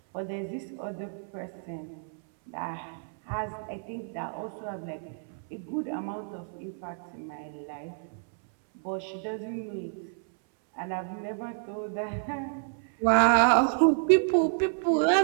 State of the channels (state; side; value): silent; left; 58 dB below the other